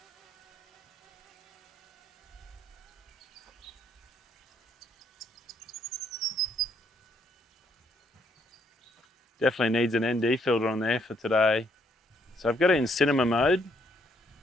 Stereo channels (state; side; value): normal; both; correlation 0.71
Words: Definitely needs an ND filter on there for today. So I've got it in cinema mode.